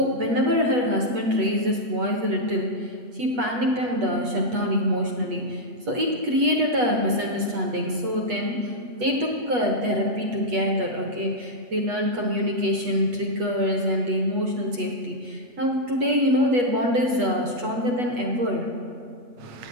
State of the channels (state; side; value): late; left; 8.2 ms